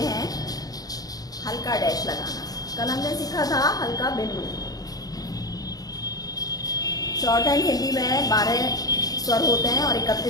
हल्का डैश लगाना। कल हमने सीखा था हल्का बिंदु। शॉर्ट हैंड हिंदी में 12 स्वर होते हैं और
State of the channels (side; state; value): right; late; 0.18 ms